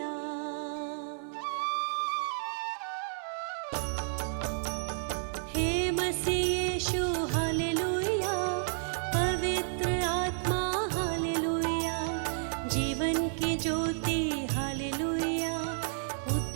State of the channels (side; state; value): left; silent; 57 dB below the other